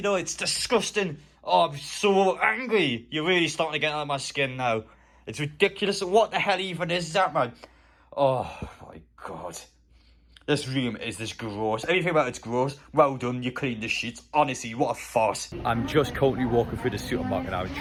know, it's disgusting. Oh, I'm so angry. You're really starting to get out of my skin now. It's ridiculous. What the hell even is that, man? Oh, my God. This room is this gross. Everything about it's gross. Well done, you cleaned the sheets. Honestly, what a farce. I'm just currently walking through the supermarket now and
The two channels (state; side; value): identical; both; correlation 1.00